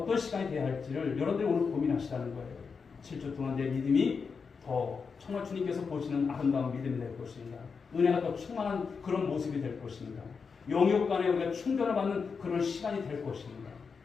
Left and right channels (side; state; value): right; quieter; 5.4 dB